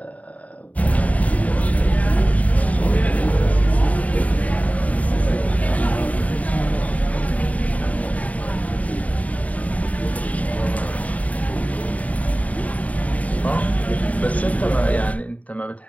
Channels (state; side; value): late; right; 0.070 ms